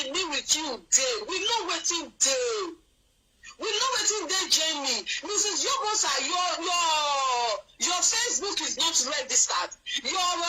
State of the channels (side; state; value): both; identical; correlation 1.00